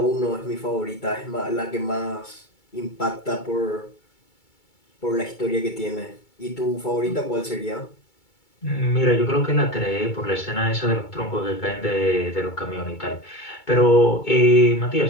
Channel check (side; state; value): right; late; 2.3 ms